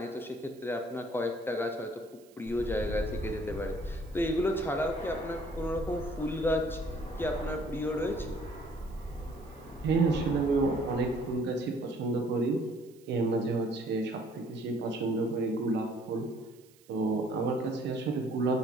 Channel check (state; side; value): noise; right; hiss, 28 dB below the sound